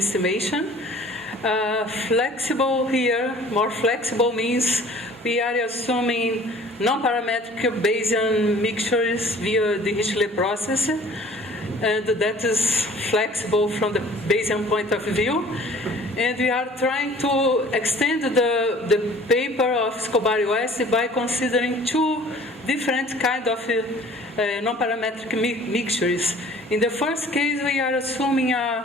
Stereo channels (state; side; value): normal; both; correlation 0.50